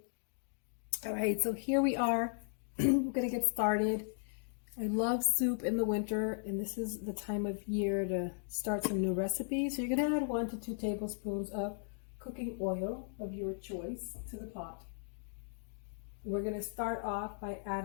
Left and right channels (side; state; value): right; silent; digital silence